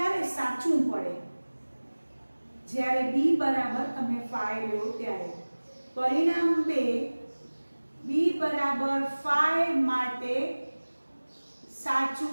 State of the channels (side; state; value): both; inverted; correlation -1.00